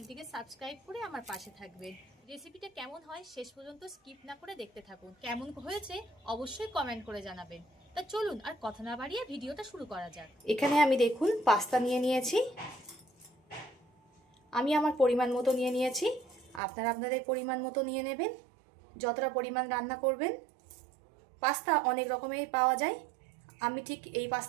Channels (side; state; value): left; drops out; at 16.6 s